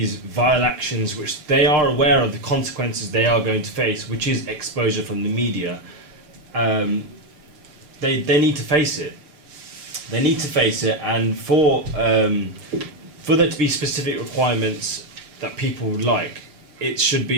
vile actions, which they are aware of the consequences they are going to face, which is exposure from the media, they need to face it. They need to face it, and for there to be specific requirements that people would like, it should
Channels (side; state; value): left; late; 6.6 ms